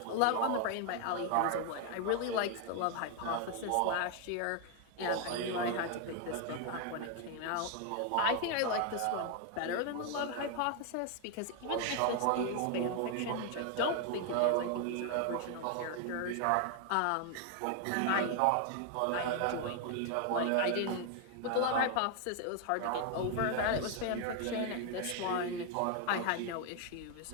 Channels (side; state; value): both; different; correlation 0.01